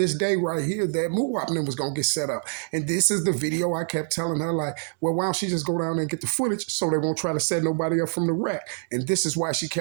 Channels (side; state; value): left; silent; 61 dB below the other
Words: day right here that Muwop was going to get set up. And this is the video I kept telling her, like, well, why don't she just go down there and get the footage so they won't try to set nobody up from the wreck? And this is why she